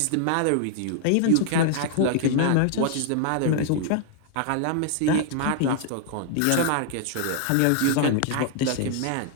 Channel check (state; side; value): different; both; correlation 0.00